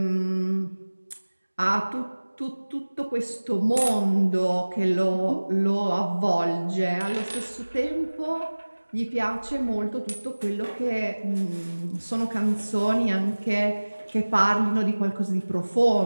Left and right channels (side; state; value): both; inverted; correlation -1.00